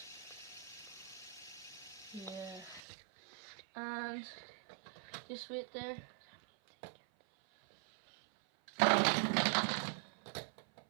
Yeah. And just wait there.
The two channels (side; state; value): left; drops out; at 2.8 s